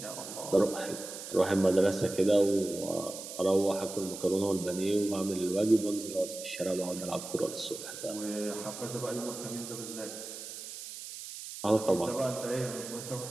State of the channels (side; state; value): right; noise; hiss, 10 dB below the sound